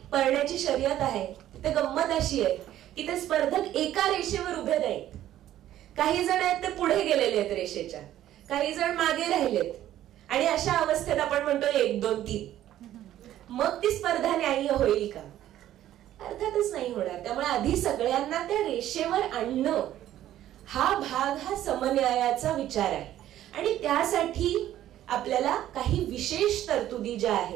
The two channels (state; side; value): quieter; left; 12.6 dB